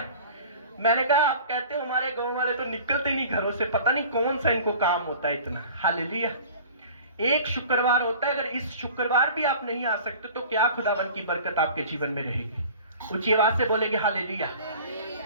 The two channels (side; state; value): both; inverted; correlation -0.44